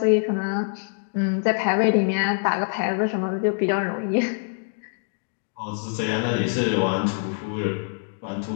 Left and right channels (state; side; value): silent; right; 62 dB below the other